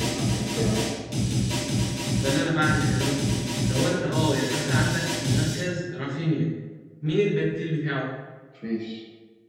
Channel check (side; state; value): both; identical; correlation 1.00